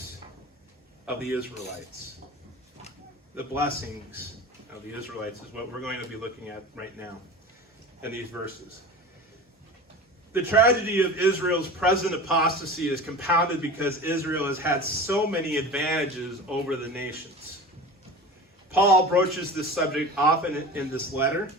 of the Israelites. The blessings of the Israelites is what we're going to be looking at right now in these verses. The tragedy of Israel's present apostasy is compounded because Israel has had so many advantages over the nations. Paul broaches this subject often in this letter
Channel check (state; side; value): normal; both; correlation 0.34